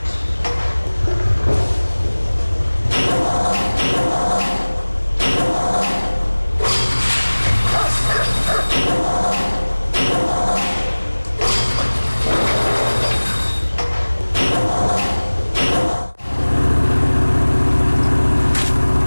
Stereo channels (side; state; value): both; inverted; correlation -1.00